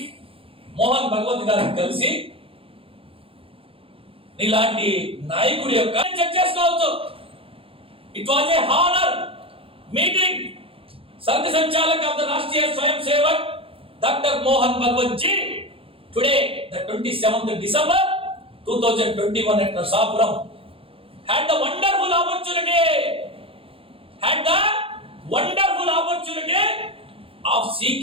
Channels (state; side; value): late; left; 0.27 ms